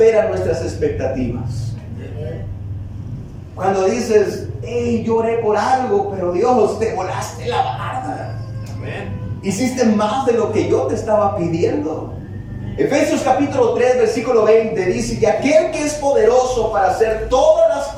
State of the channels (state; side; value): identical; both; correlation 1.00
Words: nuestras expectativas. Cuando dices, hey, yo oré por algo, pero Dios, te volaste la barda. Hiciste más de lo que yo te estaba pidiendo. Efesios capítulo 3, versículo 20 dice que aquel que es poderoso para hacer todas las